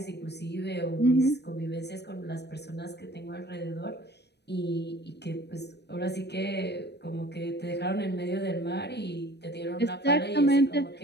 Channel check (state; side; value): late; right; 0.49 ms